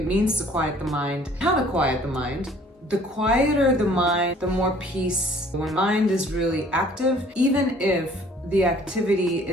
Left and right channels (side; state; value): both; normal; correlation 0.55